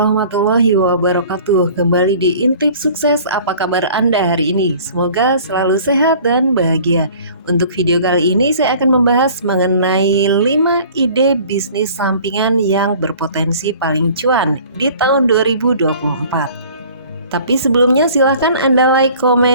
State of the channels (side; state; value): both; inverted; correlation -0.49